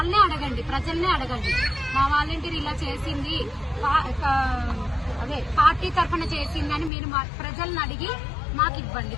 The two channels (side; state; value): right; drops out; at 6.9 s